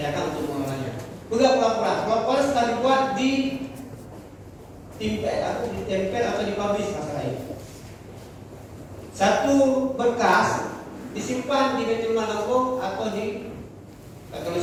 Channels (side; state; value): both; identical; correlation 1.00